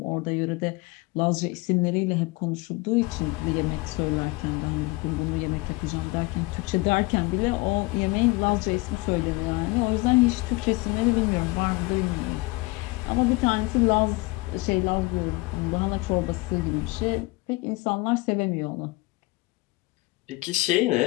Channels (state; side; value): quieter; right; 23.6 dB